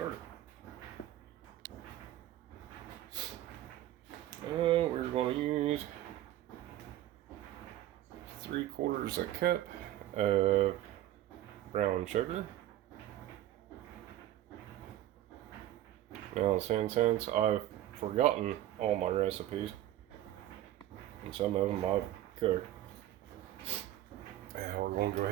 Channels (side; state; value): left; quieter; 13.6 dB